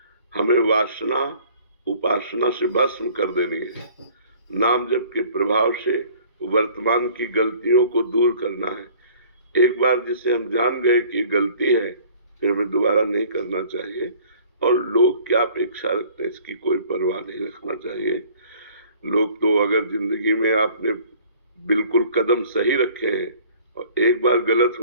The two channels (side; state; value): both; inverted; correlation -0.52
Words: हमें वासना उपासना से भस्म कर देनी है। नाम जप के प्रभाव से वर्तमान की गलतियों को दूर करना है। एक बार जिसे हम जान गए कि गलती है, फिर हमें दोबारा नहीं करना चाहिए। और लोग क्या अपेक्षा रखते हैं इसकी कोई परवाह नहीं रखना चाहिए। लोग तो अगर जिंदगी में आपने बिल्कुल कदम सही रखे हैं और एक बार गलत